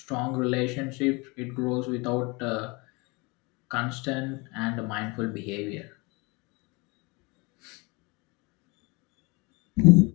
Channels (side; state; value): right; quieter; 27.5 dB